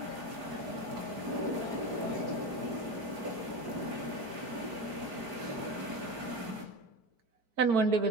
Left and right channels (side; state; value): left; late; 4.5 ms